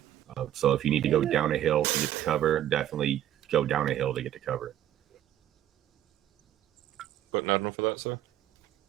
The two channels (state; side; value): quieter; left; 11.9 dB